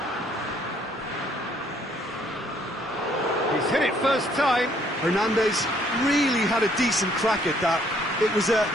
He's hit it first time. Hernandez really had a decent crack at that. It was a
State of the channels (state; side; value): normal; both; correlation 0.65